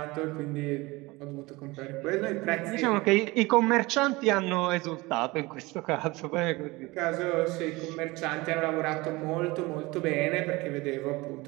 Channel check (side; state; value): left; quieter; 22.4 dB